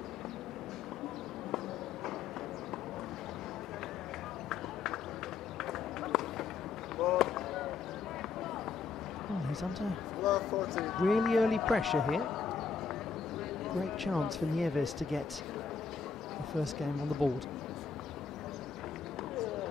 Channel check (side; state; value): right; quieter; 5.6 dB